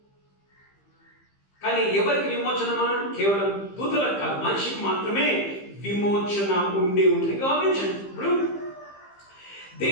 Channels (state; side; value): late; right; 15 ms